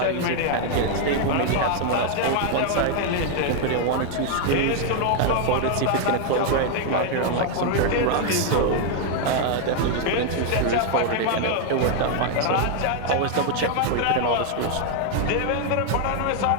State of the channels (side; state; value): both; different; correlation 0.00